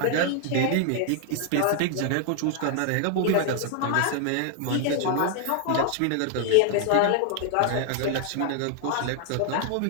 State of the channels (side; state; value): both; different; correlation 0.00